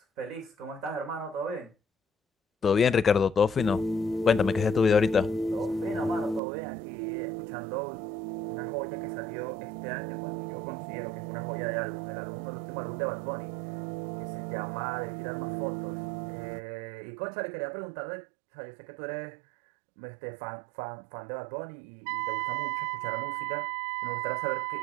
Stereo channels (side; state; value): left; drops out; at 6.4 s